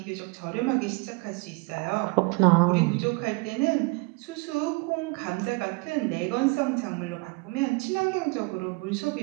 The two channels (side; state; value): left; quieter; 28.2 dB